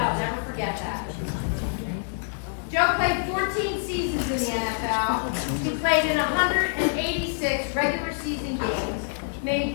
never forget that." Joe played 14 seasons in the NFL. He played in 186 regular season games,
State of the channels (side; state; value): right; silent; digital silence